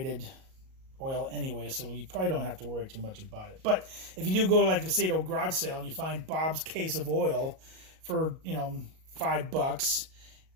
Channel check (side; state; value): left; late; 38 ms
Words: oil anyway, so you probably don't have to worry too much about it. But if you do go to, like, say, to a garage sale and you find Bob's case of oil for $5,